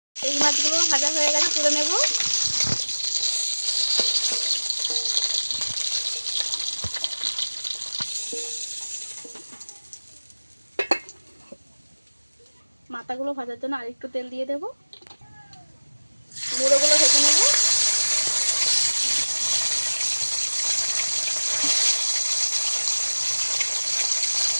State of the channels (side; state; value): both; inverted; correlation -1.00